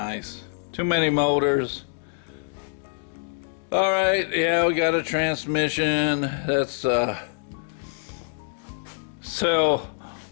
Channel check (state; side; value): silent; right; digital silence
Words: Too many motors. All right, yeah, we got a transmission. That's well,